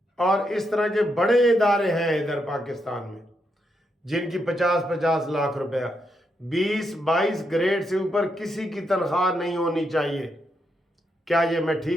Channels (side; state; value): both; normal; correlation 0.81